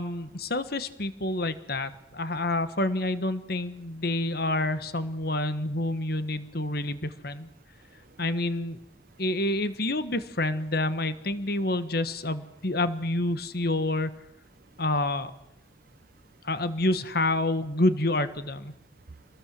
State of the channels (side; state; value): both; normal; correlation 0.40